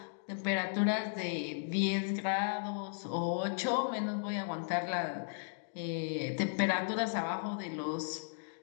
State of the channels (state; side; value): silent; right; digital silence